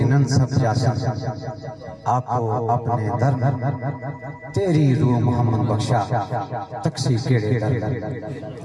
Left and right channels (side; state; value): both; identical; correlation 1.00